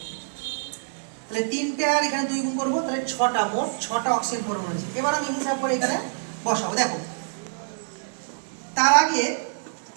তাহলে 3টে আর এখানে 2 গুণ করবো, তাহলে 6টা, মোট 6টা অক্সিজেন পরমাণু আছে। এবার আমি হিসাব করে এখানে বসাবো। দেখো তার আগে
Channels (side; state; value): left; silent; 61 dB below the other